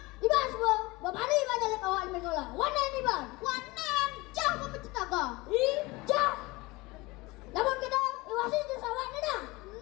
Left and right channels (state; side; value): quieter; right; 22.7 dB